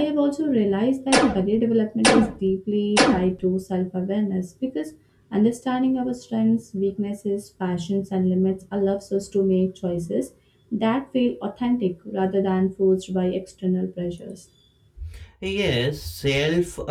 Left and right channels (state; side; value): identical; both; correlation 1.00